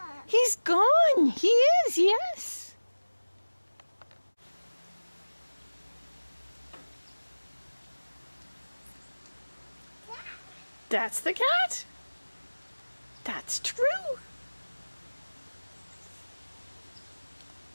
He's gone. He is, yes. That's the cat. That's true.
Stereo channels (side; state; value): both; inverted; correlation -1.00